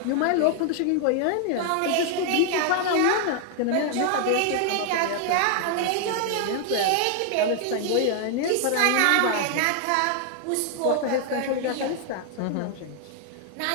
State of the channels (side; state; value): both; different; correlation 0.00